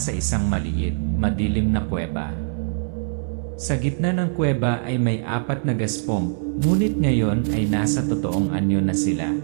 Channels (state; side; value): silent; left; 63 dB below the other